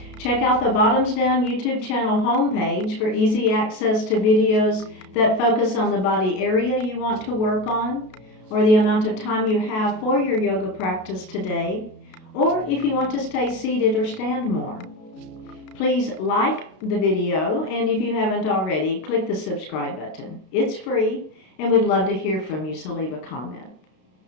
Check out the Bottoms Down YouTube channel homepage for easy access to videos that focus on the body area you want to work on, or the amount of time you have for your yoga practice today, or if you want to stay seated or stand more. Please like the video, and if you haven't already, click the subscribe button. It's free, and we'd love to hear from you, so leave a comment.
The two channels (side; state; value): right; late; 33 ms